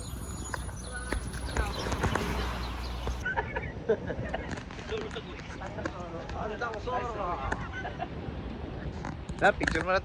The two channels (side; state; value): both; identical; correlation 1.00